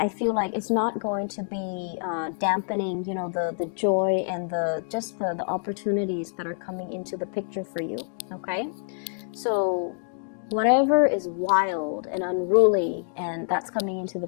feel like it's not going to be dampening, the joy and the opportunities that are coming into the picture for you, okay? So whatever is wild and unruly and that's coming into the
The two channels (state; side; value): silent; right; digital silence